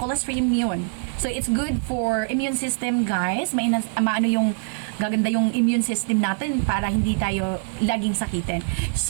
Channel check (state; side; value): silent; left; 63 dB below the other